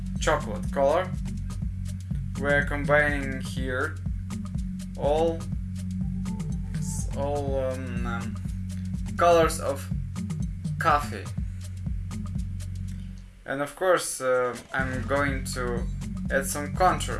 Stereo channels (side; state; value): both; identical; correlation 1.00